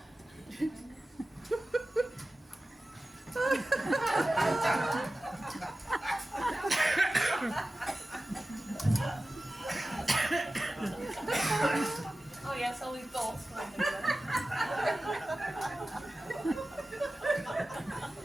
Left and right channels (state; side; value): normal; both; correlation 0.95